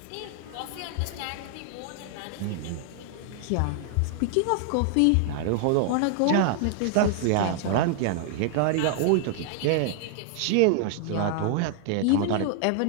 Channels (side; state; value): both; different; correlation 0.00